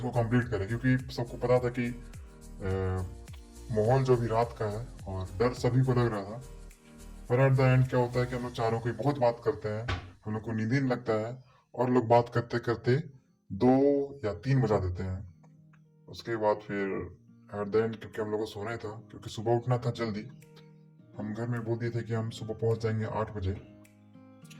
कंप्लीट करे, क्योंकि सबको पता था कि माहौल जो भी रात का है और डर सभी को लग रहा था। पर एट द एंड क्या होता है कि हम लोग चारों कोई बहुत बात करते हैं, हम लोग को नींद ही नहीं लगता है, और लोग बात करते करते 2 या 3 बजा देते हैं। उसके बाद फिर एट द एंड, क्योंकि हम लोग को सोना ही था, क्योंकि सुबह उठना था जल्दी, हम घर में बोल दिए थे कि हम सुबह पहुंच जाएंगे 8 बजे।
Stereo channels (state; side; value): identical; both; correlation 1.00